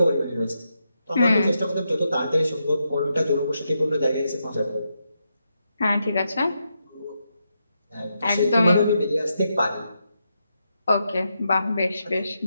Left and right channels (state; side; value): inverted; both; correlation -0.83